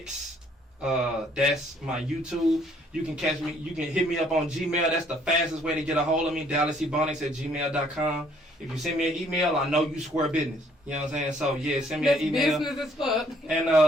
That's my YouTube. You can catch me. You can hit me up on Gmail. That's the fastest way to get a hold of me. DallasEbonix@gmail.com. If you send me an email, I know you square business. You know what I'm saying? So yeah, send me an email. Business as fuck. And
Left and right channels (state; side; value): normal; both; correlation 0.64